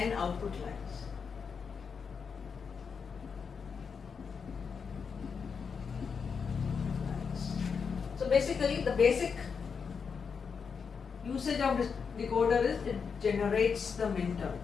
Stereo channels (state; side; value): quieter; right; 5.9 dB